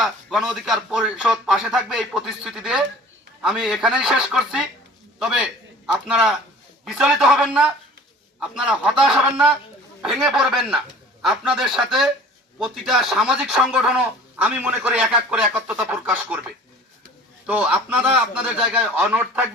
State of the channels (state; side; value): normal; both; correlation 0.46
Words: গণ অধিকার পরিষদ পাশে থাকবে এই প্রতিশ্রুতি দিয়ে আমি এখানেই শেষ করছি। তবে আপনারা বিচলিত হবেন না, আপনারা হতাশ হবেন না, ভেঙে পড়বেন না। আপনাদের সাথে প্রতিটা সামাজিক সংগঠনও আমি মনে করি এক এক করে একত্রতা প্রকাশ করবে। তো আপনারা আপনাদের জায়গায় অনড়